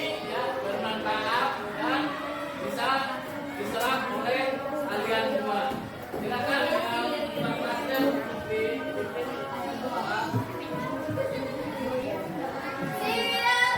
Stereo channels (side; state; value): both; identical; correlation 1.00